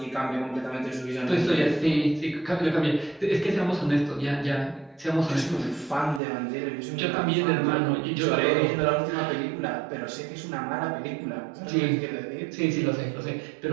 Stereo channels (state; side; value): drops out; left; at 6.2 s